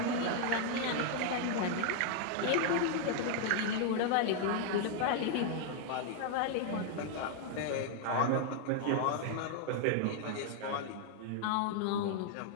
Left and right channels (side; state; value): both; different; correlation 0.00